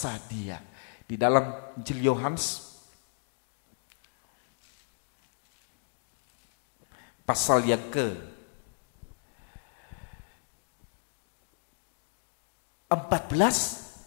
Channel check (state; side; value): silent; right; digital silence